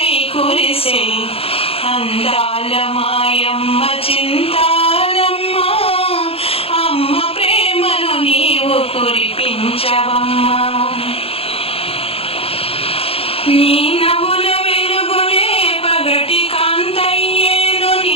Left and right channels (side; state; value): right; late; 0.28 ms